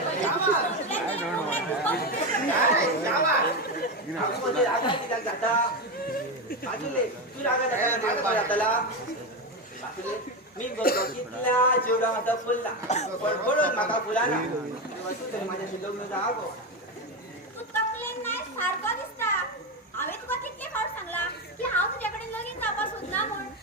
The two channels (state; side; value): normal; both; correlation 0.14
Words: मी बघतो कितल्या जेवढा माझा फुलला पण पडून माका फुलाना माझ्याशी लग्न जावं तू तकलेन नाही सारखं दिसता. हांवें तुका कितले फावट सांगला की हांव तुझ्याकडे लगीन जावपाक सोदना म्हूण.